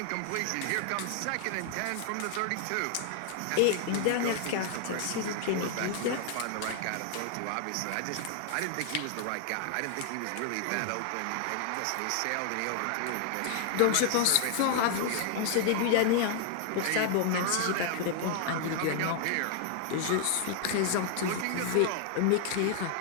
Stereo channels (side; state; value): both; different; correlation 0.00